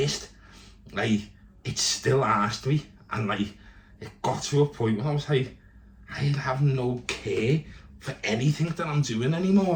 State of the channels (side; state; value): both; identical; correlation 1.00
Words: Like, it still asked me. And like, it got to a point where I was like, I have no care for anything that I'm doing anymore.